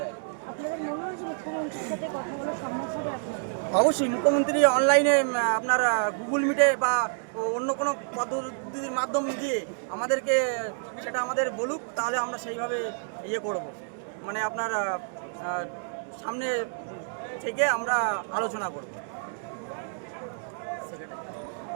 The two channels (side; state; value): left; silent; digital silence